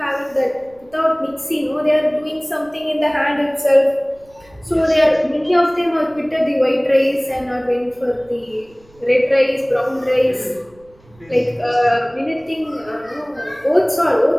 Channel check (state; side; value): noise; right; rumble, 29 dB below the sound